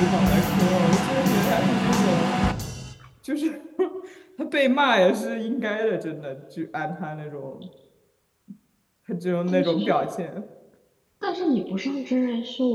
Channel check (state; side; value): identical; both; correlation 1.00